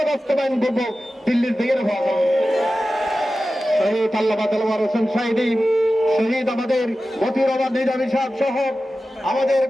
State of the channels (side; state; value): both; normal; correlation 0.94